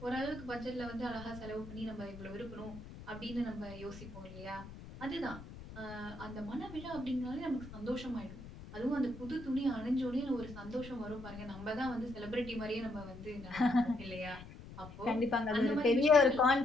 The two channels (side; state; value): left; noise; rumble, 14 dB below the sound